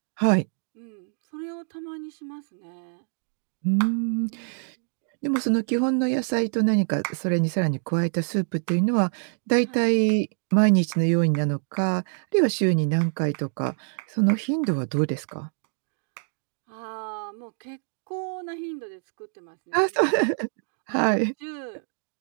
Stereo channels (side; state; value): left; silent; 60 dB below the other